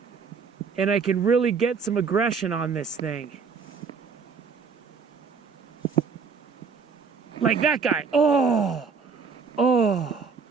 And I can really get some aggression on this thing. Like that guy. Oh, oh.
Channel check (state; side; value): quieter; left; 5.5 dB